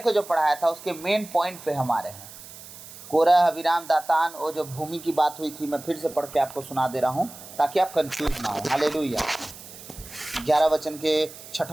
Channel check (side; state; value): right; noise; hiss, 16 dB below the sound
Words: जो पढ़ाया था उसके मेन पॉइंट पे हम आ रहे हैं। कोरह, अबीराम, दातान, वो जो भूमि की बात हुई थी, मैं फिर से पढ़ के आपको सुना दे रहा हूँ ताकि आप कंफ्यूज ना हो। हालेलुया। 11 वचन के